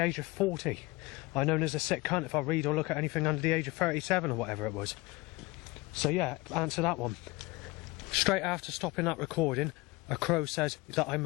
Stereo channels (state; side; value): quieter; right; 22.5 dB